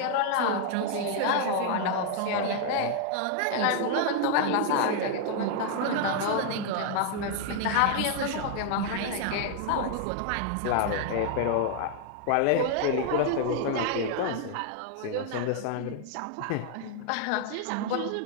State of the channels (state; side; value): different; both; correlation 0.00